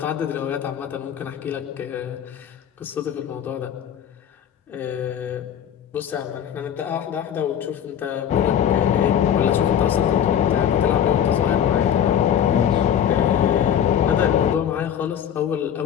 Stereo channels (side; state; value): right; quieter; 9.3 dB